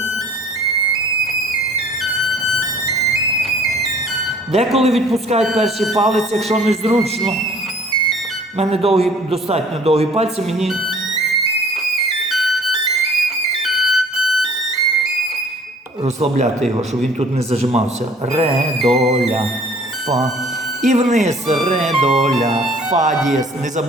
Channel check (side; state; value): both; normal; correlation 0.52